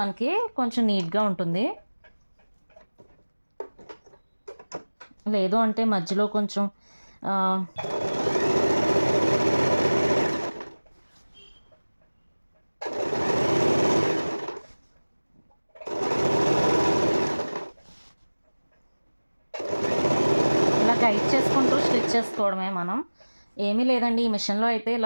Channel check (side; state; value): both; inverted; correlation -1.00